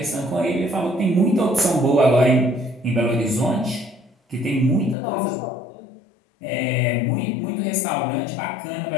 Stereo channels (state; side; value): drops out; right; at 5.0 s